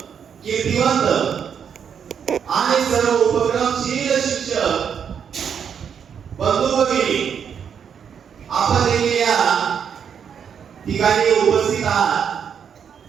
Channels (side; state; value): left; quieter; 7.6 dB